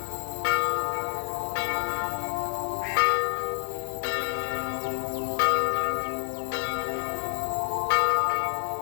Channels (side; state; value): right; quieter; 35.2 dB